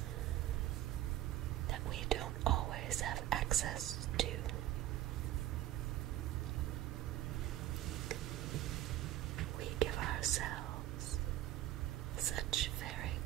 that we don't always have access to. We give ourselves such very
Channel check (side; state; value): left; quieter; 13.8 dB